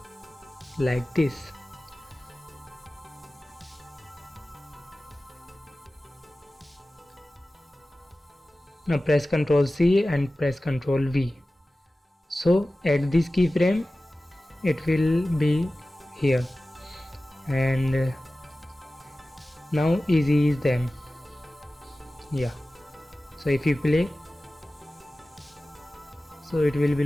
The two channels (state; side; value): normal; both; correlation 0.96